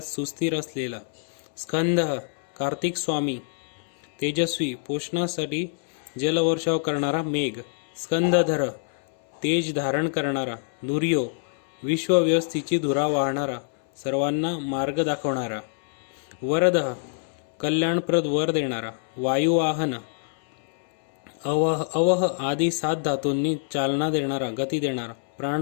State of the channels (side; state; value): right; silent; 61 dB below the other